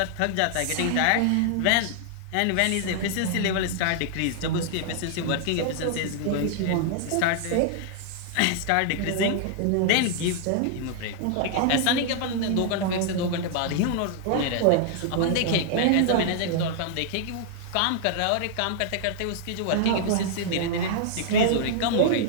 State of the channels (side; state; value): both; different; correlation -0.01